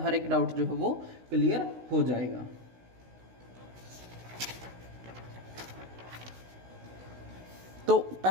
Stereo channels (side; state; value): left; late; 16 ms